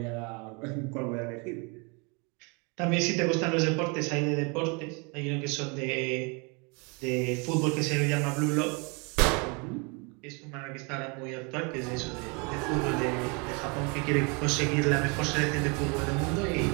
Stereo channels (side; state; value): left; quieter; 31.8 dB